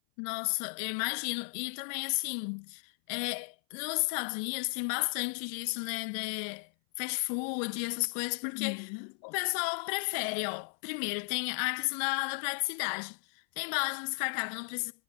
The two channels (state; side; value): silent; right; 55 dB below the other